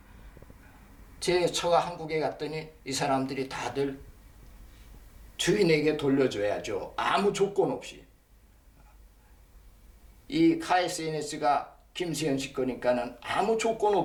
제 처가 한국에 갔더니 이 사람들이 다들 주인에게 돌려줘야죠. 아무 조건 없이. 이 KSNS가 김세현 씨 거니까는 아무 조건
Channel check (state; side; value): identical; both; correlation 1.00